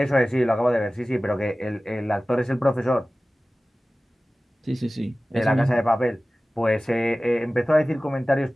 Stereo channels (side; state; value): both; normal; correlation 0.97